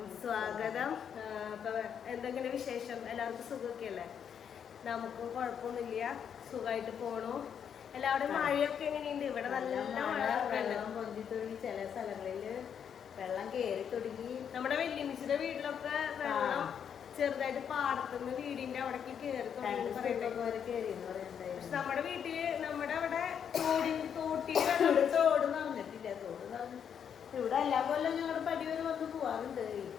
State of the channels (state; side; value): quieter; right; 8.0 dB